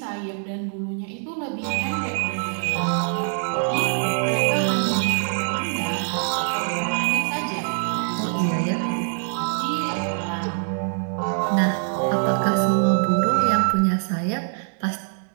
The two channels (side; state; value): left; silent; 63 dB below the other